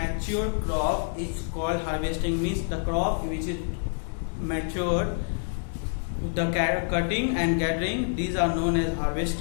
crop is called harvesting. Means the crop which is matured, the cutting and gathering, these are known as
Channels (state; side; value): silent; right; digital silence